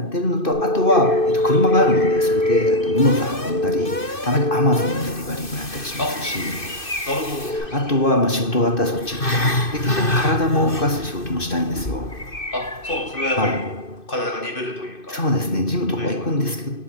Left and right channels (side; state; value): right; late; 2.6 ms